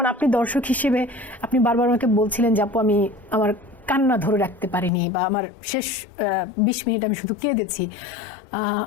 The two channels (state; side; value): drops out; right; at 4.9 s